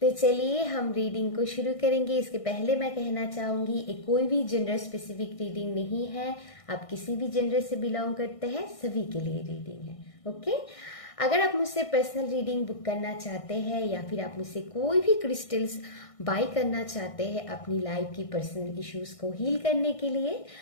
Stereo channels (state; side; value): late; right; 1.6 ms